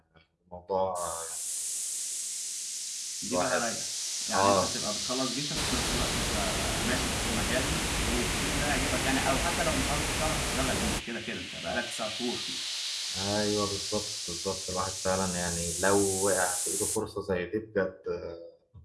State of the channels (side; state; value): both; identical; correlation 1.00